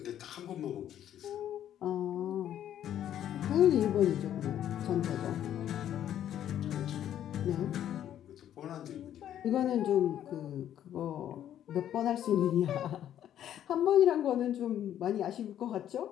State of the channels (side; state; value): right; quieter; 10.8 dB